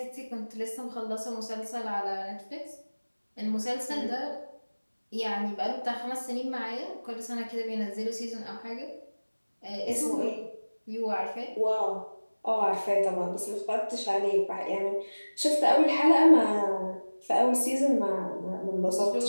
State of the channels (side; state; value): both; inverted; correlation -1.00